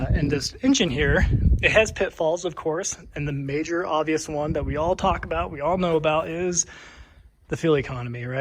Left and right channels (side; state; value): both; identical; correlation 1.00